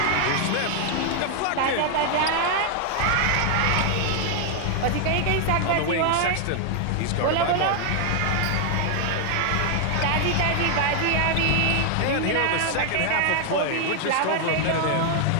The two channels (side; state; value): both; different; correlation 0.00